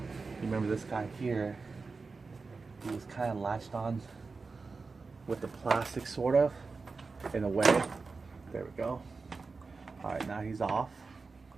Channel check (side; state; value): left; quieter; 4.3 dB